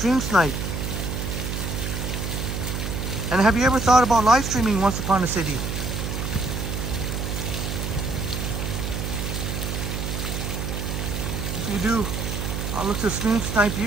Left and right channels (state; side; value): noise; right; hum, 3 dB below the sound